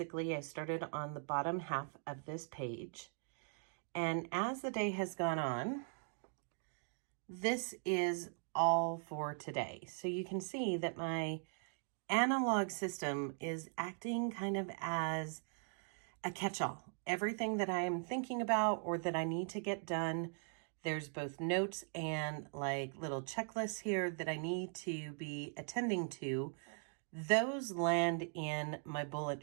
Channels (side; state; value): left; silent; 51 dB below the other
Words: I started on the bottom half of this page, and as the day has gone on, this is all for today. So you can see that my analog system is acting kind of as a catch-all. Everything that I am thinking about or that I need to get done, there's both notes and like little checklists here that I need to be attending to. Those land in my bullet